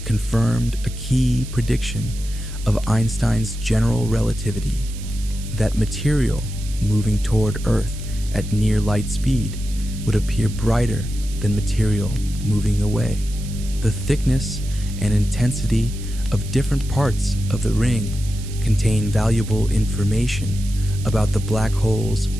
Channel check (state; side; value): noise; right; hiss, 16 dB below the sound